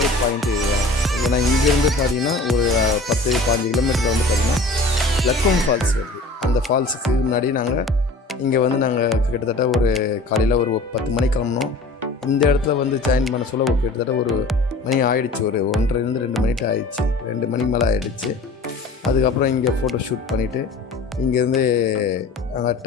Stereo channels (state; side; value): quieter; right; 3.2 dB